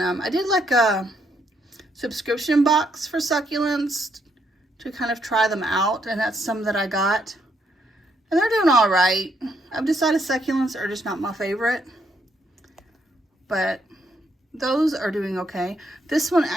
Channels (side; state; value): both; normal; correlation 0.75